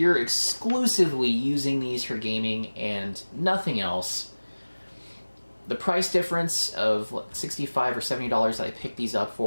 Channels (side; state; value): both; inverted; correlation -1.00